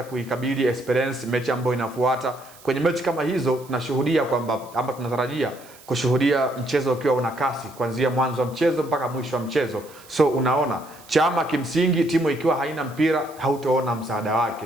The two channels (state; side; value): noise; right; hiss, 23 dB below the sound